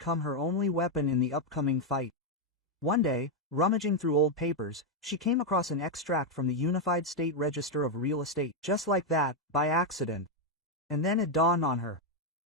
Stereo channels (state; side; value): normal; both; correlation 0.02